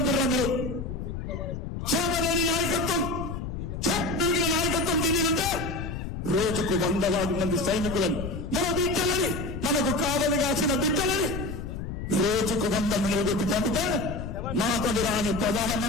మీరు సోమలేని నాయకత్వం, చక్కని నాయకత్వం దిగినంటే రోజుకు 100 మంది సైనికులను, మన బిడ్డలని, మనకు కావలి కాసిన బిడ్డలని రోజుకు 100 నిలబెట్టి పంపితే మాతడు రాని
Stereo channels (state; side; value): noise; left; rumble, 6 dB below the sound